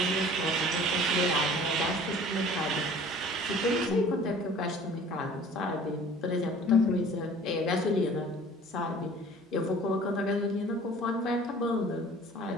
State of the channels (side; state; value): both; normal; correlation 0.48